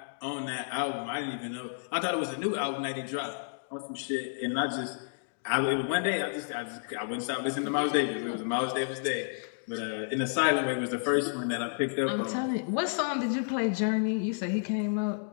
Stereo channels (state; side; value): silent; right; digital silence